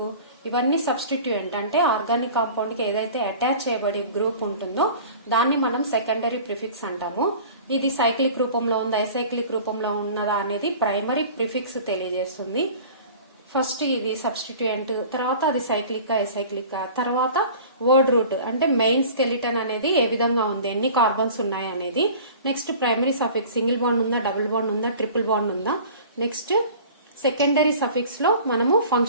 ఇవన్నీ సబ్స్టిట్యూయెంట్ అంటే ఆర్గానిక్ కాంపౌండ్ కి ఏదైతే అటాచ్ చేయబడి గ్రూప్ ఉంటుందో దాన్ని మనం సెకండరీ ప్రిఫిక్స్ అంటాము. ఇది సైక్లిక్ రూపంలో ఉందా ఎసైక్లిక్ రూపంలో ఉన్నదా అనేది ప్రైమరీ ప్రిఫిక్స్ తెలియజేస్తుంది. ఫస్ట్ ఇది సబ్స్టిట్యూయెంట్, తర్వాత అది సైక్లిక్ ఎసైక్లిక్, తర్వాత వర్డ్ రూట్ అంటే మెయిన్ స్కెలిటన్ అనేది ఏ విధంగా ఉంది, ఎన్ని కార్బన్స్ ఉన్నాయి అనేది. Next primary suffix, single bond ఉందా, డబుల్ బాండ్ ఉందా, ట్రిపుల్ బాండ్ ఉందా. నెక్స్ట్ సెకండరీ సఫిక్స్ లో మనము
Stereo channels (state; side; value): inverted; both; correlation -0.43